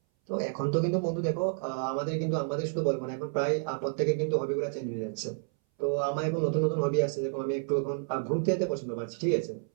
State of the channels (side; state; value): left; silent; 58 dB below the other